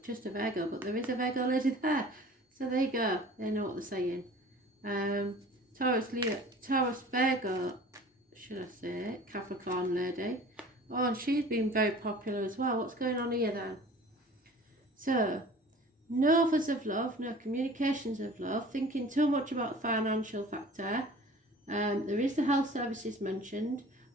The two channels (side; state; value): both; normal; correlation 0.45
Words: just a Virgo, but there is a Virgo lady there. So there you go. They know what they're saying. Taurus, Leo, Taurus, Virgo, should I say, Capricorn lady. Oh, and she's been very popular as well. What's going on here then? So, no offers of love, no communications of love, thinking too much about the financial factor. There is the health services mentioned,